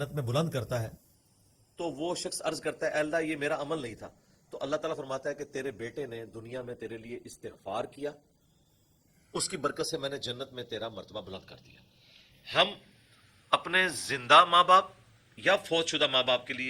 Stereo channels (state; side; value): identical; both; correlation 1.00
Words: میں بلند کرتا ہے، تو وہ شخص عرض کرتا ہے اے اللہ یہ میرا عمل نہیں تھا، تو اللہ تعالیٰ فرماتا ہے کہ تیرے بیٹے نے دنیا میں تیرے لیے استغفار کیا، اس کی برکت سے میں نے جنت میں تیرا مرتبہ بلند کر دیا۔ ہم اپنے زندہ ماں باپ یا فوت شدہ ماں باپ کے